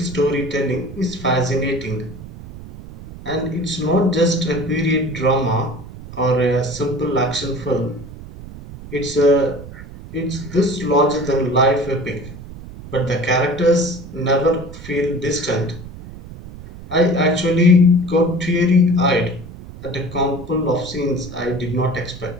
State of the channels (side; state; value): right; noise; rumble, 15 dB below the sound